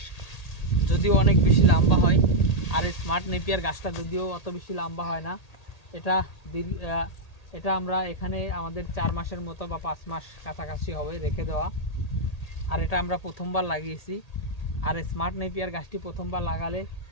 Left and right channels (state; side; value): late; right; 1.8 ms